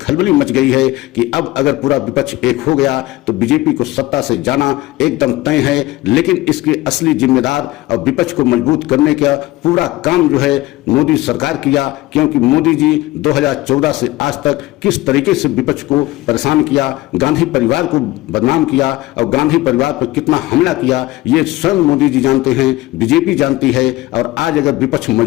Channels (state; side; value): quieter; right; 18.3 dB